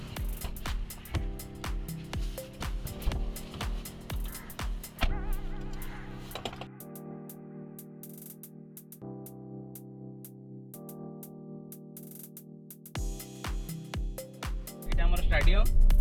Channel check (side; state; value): both; identical; correlation 1.00